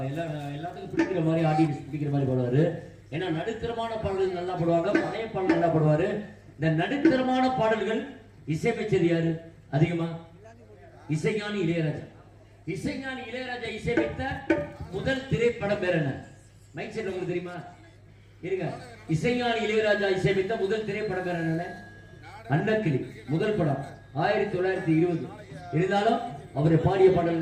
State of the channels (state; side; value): identical; both; correlation 1.00